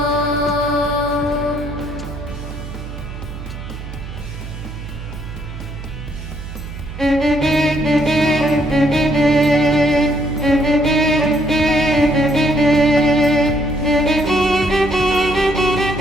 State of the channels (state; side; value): noise; right; hum, 10 dB below the sound